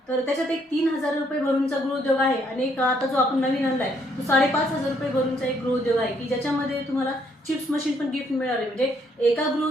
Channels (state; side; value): normal; both; correlation 0.69